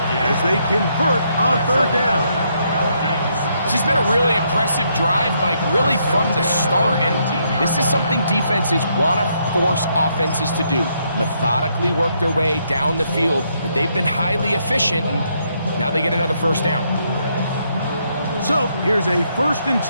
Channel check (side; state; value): both; inverted; correlation -0.75